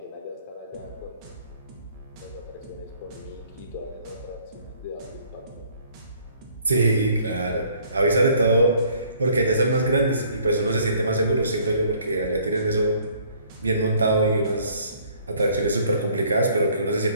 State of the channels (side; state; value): both; inverted; correlation -0.59